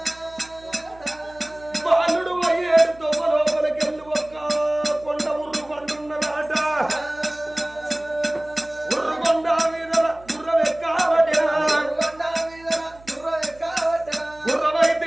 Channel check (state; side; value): noise; right; hum, 24 dB below the sound